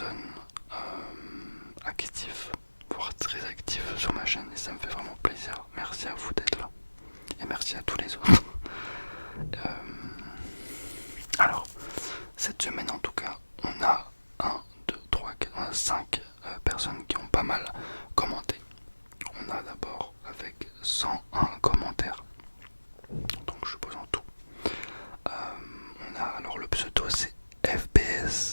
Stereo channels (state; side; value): inverted; both; correlation -1.00